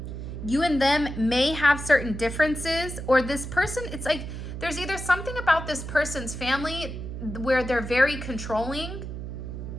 You and them may have certain differences, or this person, it's like there's either something about this person's family where they're very controlling.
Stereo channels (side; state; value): right; noise; hum, 7 dB below the sound